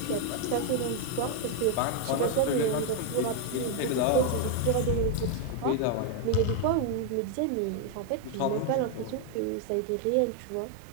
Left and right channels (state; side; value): different; both; correlation 0.01